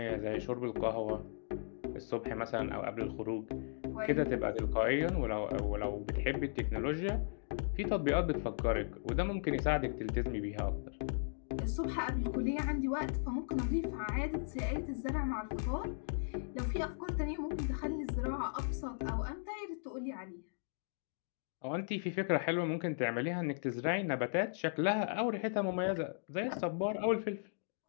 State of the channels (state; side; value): silent; right; digital silence